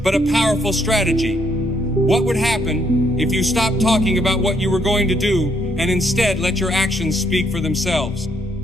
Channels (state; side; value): normal; both; correlation 0.72